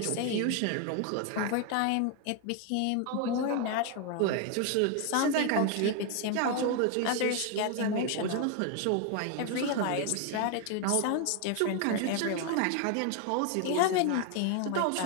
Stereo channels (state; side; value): different; both; correlation 0.01